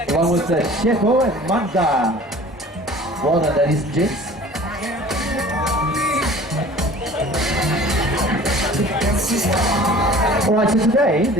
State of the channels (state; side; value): normal; both; correlation 0.46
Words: Along with Shepo and Manda. Well done, ladies and gents. Alright, so today